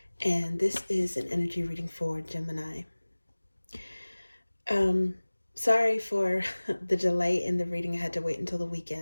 and this is an energy reading for Gemini. Sorry for the delay in the reading. I had to wait until the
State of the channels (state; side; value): inverted; both; correlation -1.00